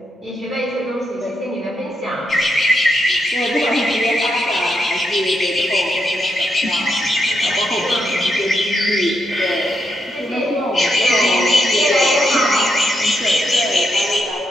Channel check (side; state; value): both; normal; correlation 0.81